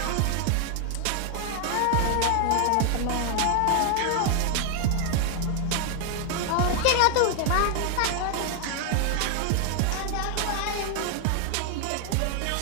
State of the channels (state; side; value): different; both; correlation 0.00